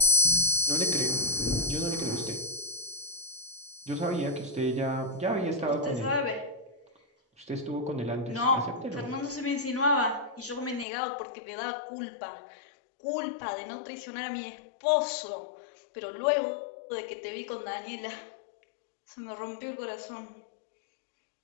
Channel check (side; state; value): right; drops out; at 10.9 s